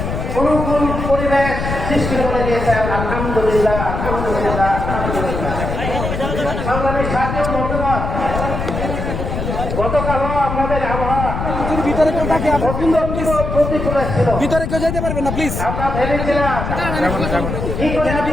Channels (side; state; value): left; noise; rumble, 4 dB below the sound